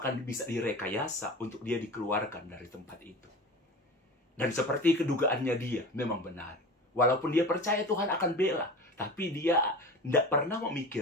bisa direkayasa untuk dia dikeluarkan dari tempat itu. Dan seperti kedugaannya dia, memang benar. Walaupun dia percaya Tuhan akan bela, tapi dia tidak pernah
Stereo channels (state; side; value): normal; both; correlation 0.33